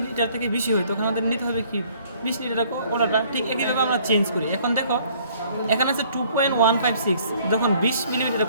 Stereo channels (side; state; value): both; inverted; correlation -0.59